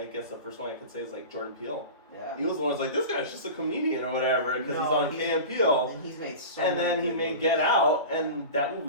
guess the first one I could say is like Jordan Peele. Yeah. He was the one who's like, this guy's just a comedian or whatever because he's No, on Key and Peele. And he's made so And many then he good made movies. Get Out, and that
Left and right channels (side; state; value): both; inverted; correlation -0.31